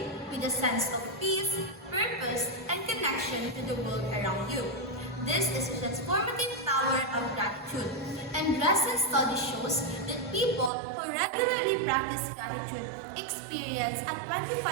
with a sense of peace, purpose, and connection to the world around you. This is the transformative power of gratitude, and recent study shows that people who regularly practice gratitude experience a 25%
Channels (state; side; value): drops out; left; at 10.7 s